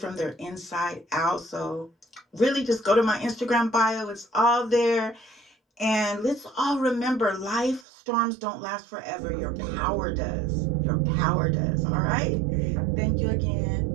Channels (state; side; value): drops out; left; at 7.9 s